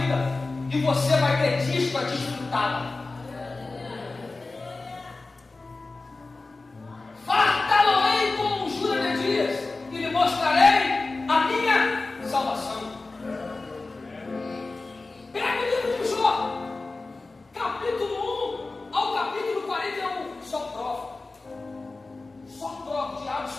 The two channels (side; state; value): right; quieter; 3.5 dB